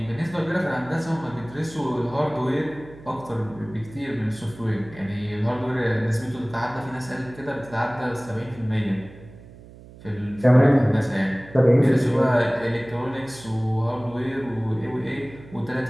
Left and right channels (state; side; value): noise; right; hum, 19 dB below the sound